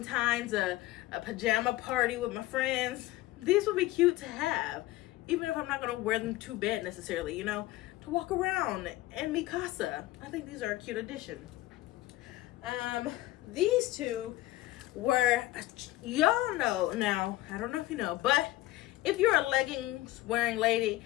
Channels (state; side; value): quieter; right; 17.3 dB